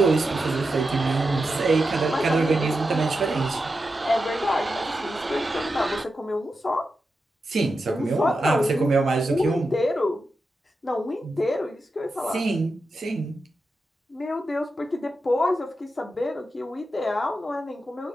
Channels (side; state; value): both; normal; correlation 0.89